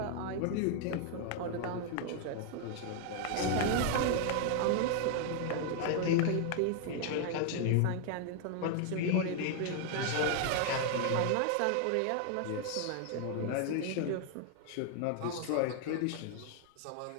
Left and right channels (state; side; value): different; both; correlation 0.00